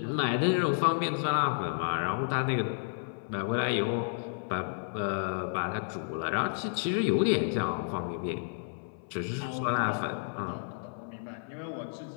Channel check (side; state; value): right; silent; 57 dB below the other